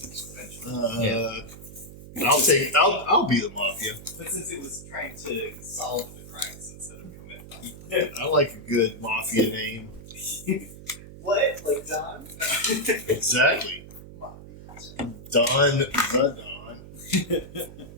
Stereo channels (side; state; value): right; noise; hum, 16 dB below the sound